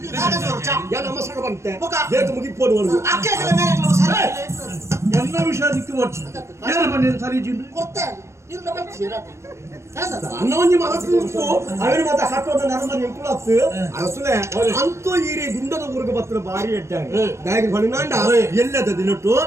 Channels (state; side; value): late; left; 0.13 ms